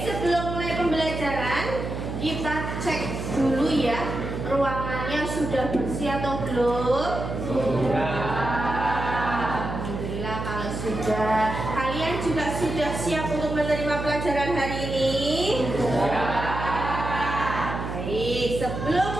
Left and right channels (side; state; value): right; noise; hum, 5 dB below the sound